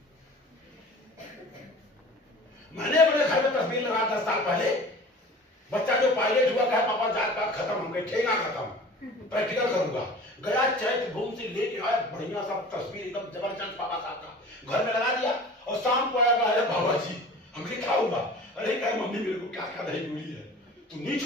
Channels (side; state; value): both; normal; correlation 0.41